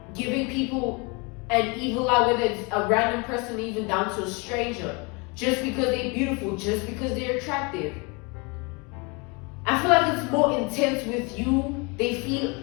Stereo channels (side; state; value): right; quieter; 29.9 dB